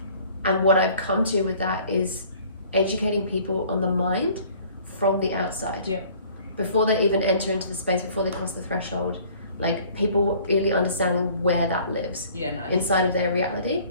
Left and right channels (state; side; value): inverted; both; correlation -0.53